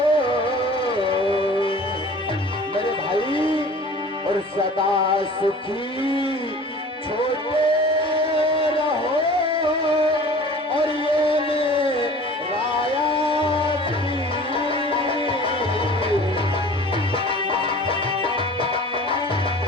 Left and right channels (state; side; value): normal; both; correlation 0.43